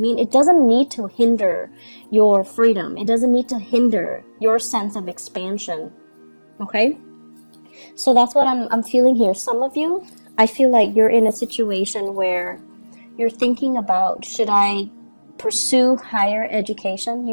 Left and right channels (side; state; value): both; inverted; correlation -1.00